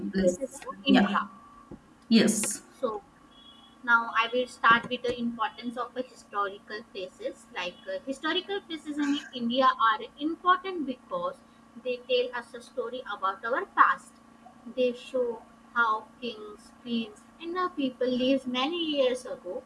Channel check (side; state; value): both; identical; correlation 1.00